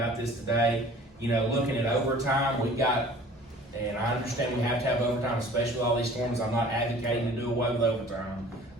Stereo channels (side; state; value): both; normal; correlation 0.48